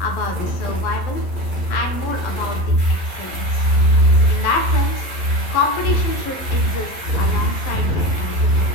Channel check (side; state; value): right; late; 11 ms